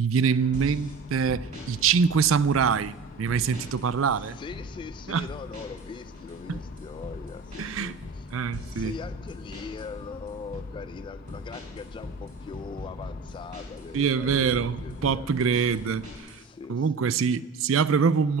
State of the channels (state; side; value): quieter; left; 5.1 dB